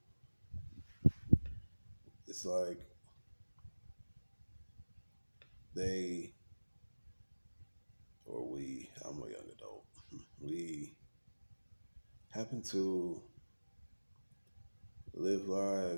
It's like they or we, I'm a young adult, we happen to live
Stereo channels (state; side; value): inverted; both; correlation -1.00